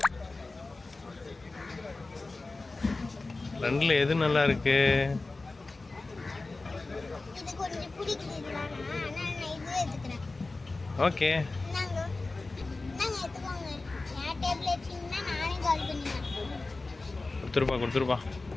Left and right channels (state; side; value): quieter; right; 3.4 dB